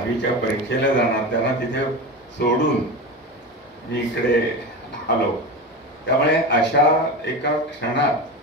परीक्षेला जाणार, त्यांना तिथे सोडून मी इकडे आलो. त्यामुळे अशा एका क्षणात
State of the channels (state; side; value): normal; both; correlation 0.24